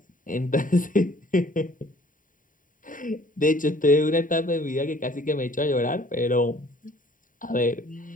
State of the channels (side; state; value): right; late; 0.39 ms